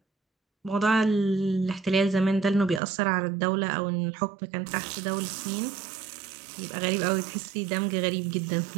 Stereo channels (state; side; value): drops out; left; at 2.8 s